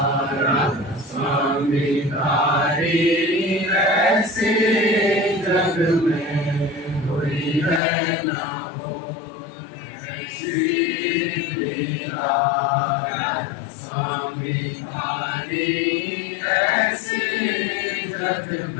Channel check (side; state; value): right; drops out; at 7.8 s